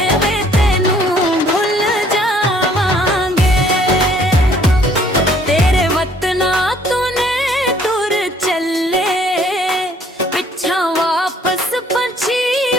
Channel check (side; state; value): both; normal; correlation 0.60